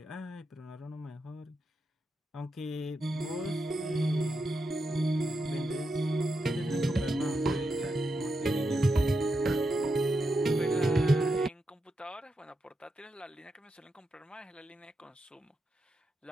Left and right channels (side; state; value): both; normal; correlation 0.86